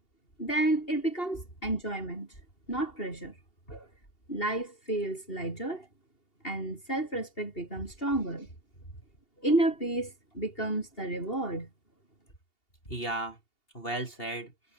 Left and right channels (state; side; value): late; right; 2.8 ms